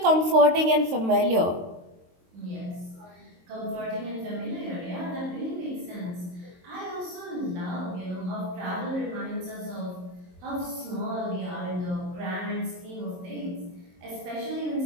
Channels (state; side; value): late; left; 22 ms